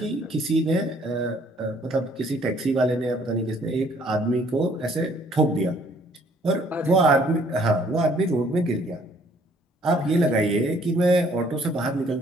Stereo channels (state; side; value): normal; both; correlation 0.61